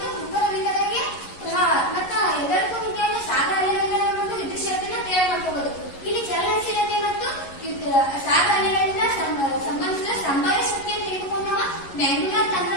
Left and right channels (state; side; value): late; right; 11 ms